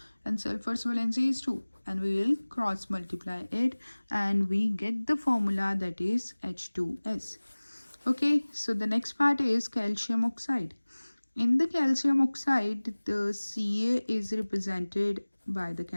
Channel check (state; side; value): inverted; both; correlation -1.00